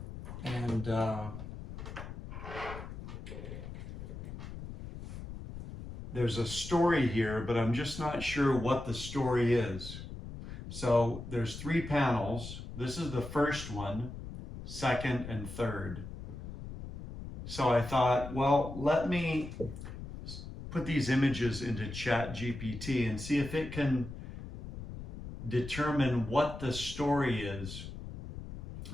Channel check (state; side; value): noise; left; rumble, 10 dB below the sound